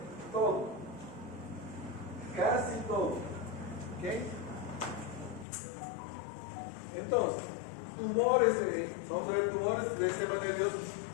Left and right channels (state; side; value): drops out; right; at 5.5 s